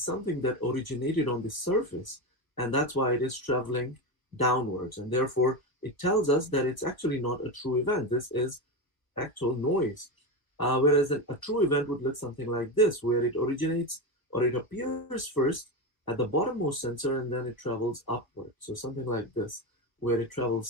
that originated on the surface, and that's why it is traveling downwards. And therefore, it tells us that it's actually not a true event. This is actual noise. Whereas a true event would look something like this, where it originates or it appears first at the bottommost sensor and then it travels upward. So something like this, where it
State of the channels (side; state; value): right; late; 1.1 ms